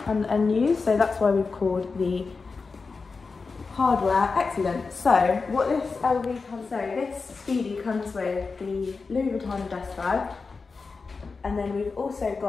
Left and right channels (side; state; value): right; quieter; 4.5 dB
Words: and unused, so that's why we've called the hardware excellent. So what this LV comes, so this Speedy comes with the Louis Vuitton dust bag, and then we've also